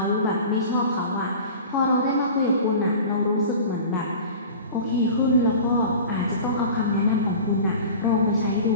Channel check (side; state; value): both; inverted; correlation -0.38